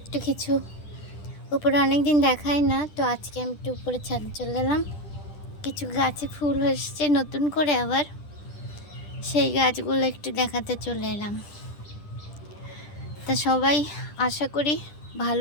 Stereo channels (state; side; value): late; right; 10 ms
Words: কিছু উপরে অনেক দিন দেখাই না, তো আজকে আমি একটু উপরের ছাদে চলে এলাম। কিছু গাছে ফুল এসছে নতুন করে, আবার সেই গাছগুলো একটু দেখাতে চলে এলাম। তা সবাই আশা করি